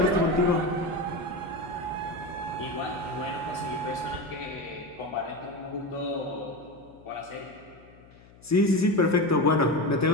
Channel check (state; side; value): noise; left; hum, 24 dB below the sound